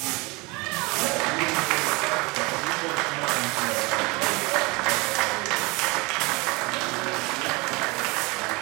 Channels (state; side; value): quieter; left; 25.9 dB